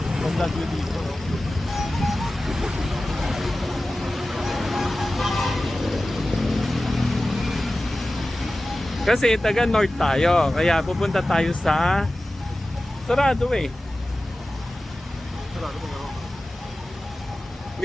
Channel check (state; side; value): normal; both; correlation 0.95